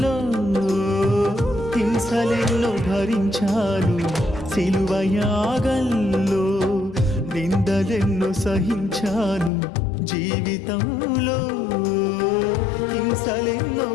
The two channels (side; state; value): right; drops out; at 9.5 s